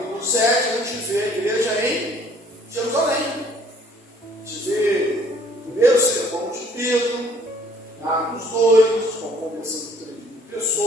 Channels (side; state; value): both; normal; correlation 0.58